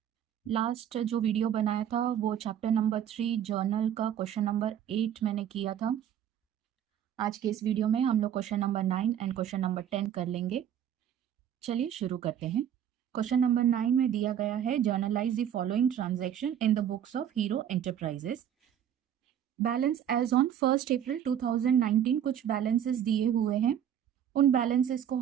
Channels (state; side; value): quieter; left; 9.7 dB